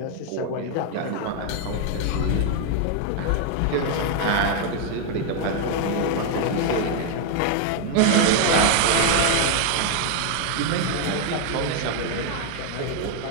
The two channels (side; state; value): both; different; correlation 0.00